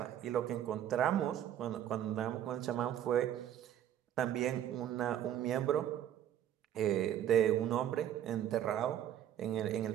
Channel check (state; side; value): quieter; left; 10.8 dB